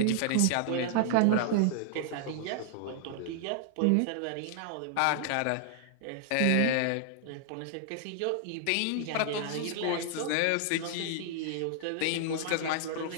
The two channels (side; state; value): both; different; correlation 0.00